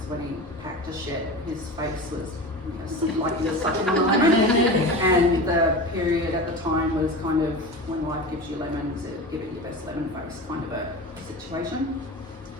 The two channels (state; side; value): normal; both; correlation 0.30